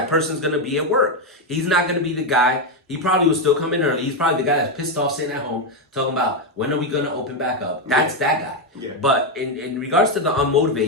person's going to be at work. He's not going to be the guy. He probably will still come in early. He's probably the guy that's pissed off sitting at home talking about when are we going to open back up. That's that guy. Yeah. But in regards to the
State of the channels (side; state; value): both; normal; correlation 0.06